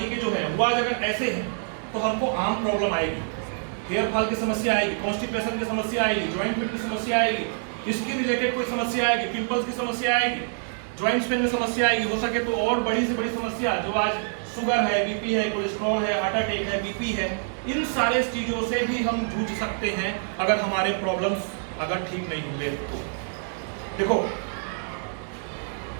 के जो है वो आज अगर ऐसे हैं तो हमको आम प्रॉब्लम आएगी, हेयर फॉल की समस्या आएगी, कॉन्स्टिपेशन की समस्या आएगी, जॉइंट पेन की समस्या आएगी, स्किन रिलेटेड कोई समस्या आएगी, पिंपल्स की समस्या आएगी, जॉइंट्स पेन में समस्या आएगी, हो सके तो और बड़ी से बड़ी समस्या जो आज शुगर है, बीपी है, कोलेस्ट्रॉल है, हार्ट अटैक है, बीपी है, इन सारे चीजों से भी हम जूझ सकते हैं अगर हमारे प्रॉब्लम्स अगर ठीक नहीं होंगे तो। देखो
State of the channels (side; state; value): left; silent; 60 dB below the other